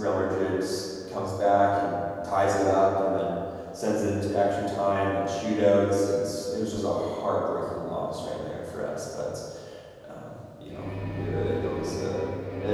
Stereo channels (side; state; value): both; identical; correlation 1.00